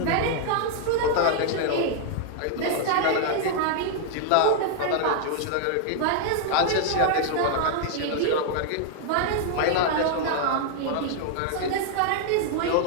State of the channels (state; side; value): different; both; correlation 0.00